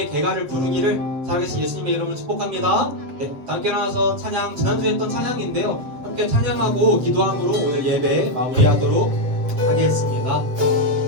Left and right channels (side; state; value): left; late; 7.7 ms